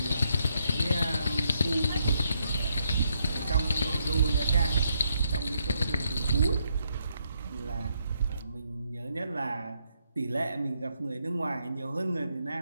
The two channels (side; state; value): both; inverted; correlation -0.76